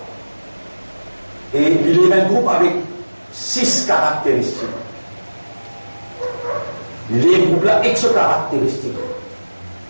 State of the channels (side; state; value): both; inverted; correlation -1.00